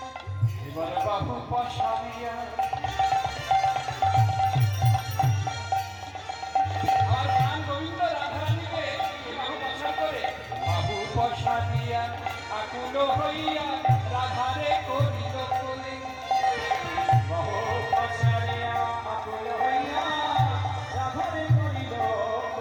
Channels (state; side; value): identical; both; correlation 1.00